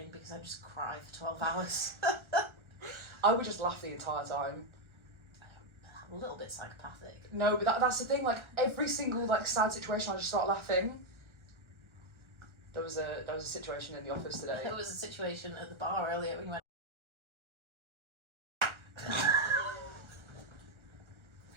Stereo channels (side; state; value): left; late; 1.4 ms